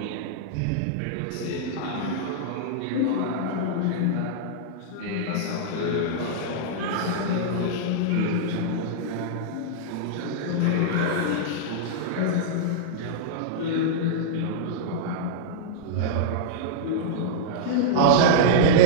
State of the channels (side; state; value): both; different; correlation -0.02